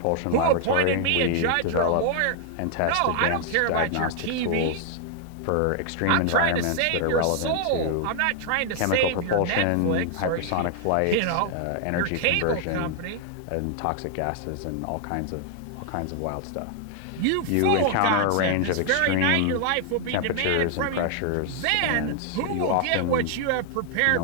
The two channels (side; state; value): both; different; correlation 0.00